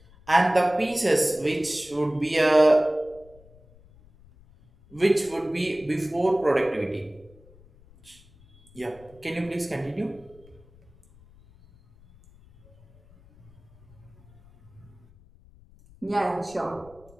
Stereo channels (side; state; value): left; noise; rumble, 26 dB below the sound